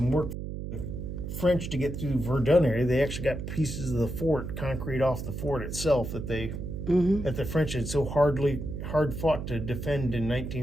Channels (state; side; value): noise; right; hum, 6 dB below the sound